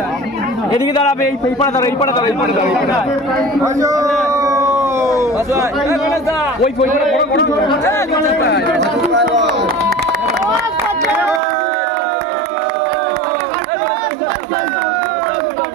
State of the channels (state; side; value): drops out; left; at 11.4 s